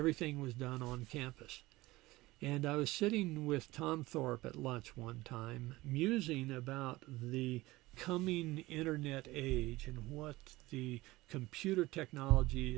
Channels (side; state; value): left; quieter; 19.3 dB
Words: was done on campus. And I was sitting with Tom Thorpe at lunch one time, musing about the coming internet age and what the computer technology